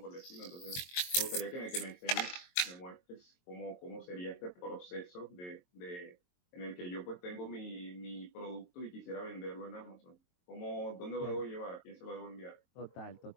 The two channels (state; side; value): late; right; 22 ms